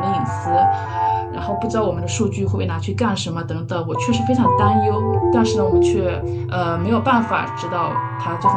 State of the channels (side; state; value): both; identical; correlation 1.00